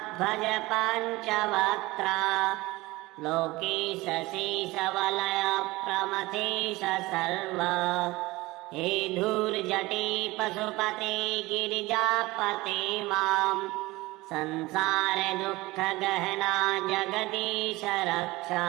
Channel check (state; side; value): quieter; left; 20.5 dB